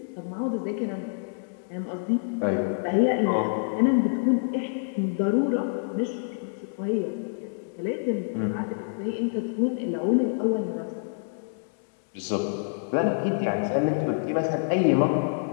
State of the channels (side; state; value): right; silent; 60 dB below the other